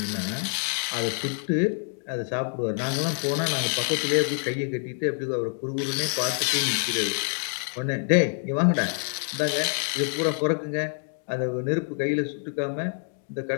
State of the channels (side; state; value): right; silent; 56 dB below the other